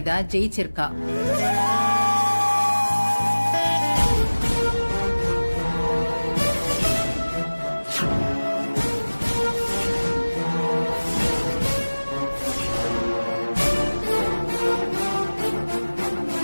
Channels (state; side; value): inverted; both; correlation -1.00